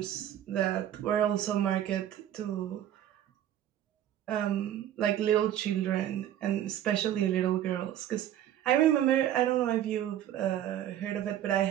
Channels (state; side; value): quieter; left; 11.4 dB